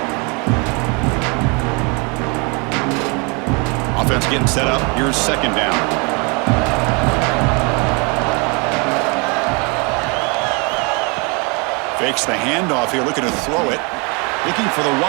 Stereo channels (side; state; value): left; quieter; 31.5 dB